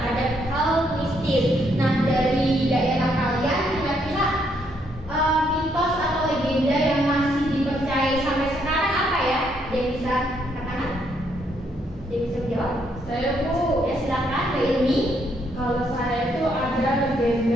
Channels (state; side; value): normal; both; correlation 0.73